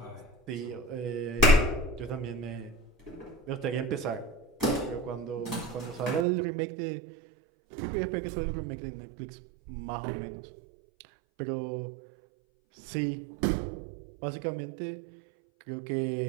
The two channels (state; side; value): drops out; left; at 6.2 s